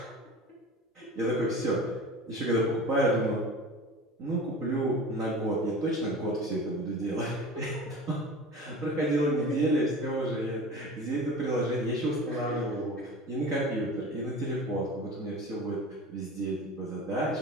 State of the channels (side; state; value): both; normal; correlation 0.36